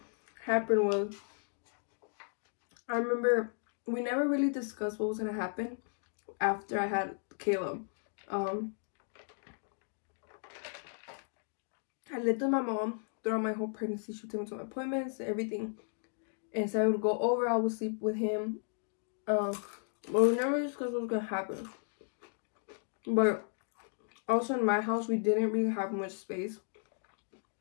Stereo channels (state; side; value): silent; right; 55 dB below the other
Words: happened was, I remember we never really discussed what was gonna happen after I had Caleb. I lived with my mom throughout my whole pregnancy. She took me to my appointments, everything. And so I would go over, I would sleep with him. But we never discussed what was gonna happen. But also in my house, we didn't really have much space.